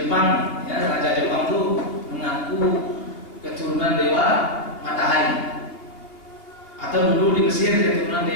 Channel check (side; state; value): right; late; 2.8 ms